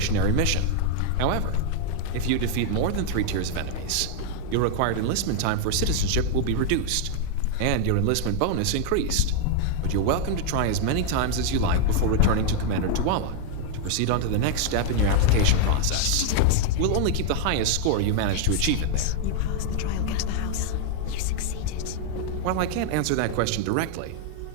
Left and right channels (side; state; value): both; different; correlation 0.00